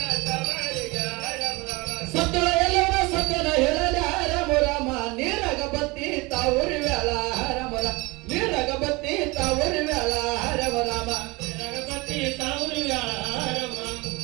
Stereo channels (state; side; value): quieter; left; 24.3 dB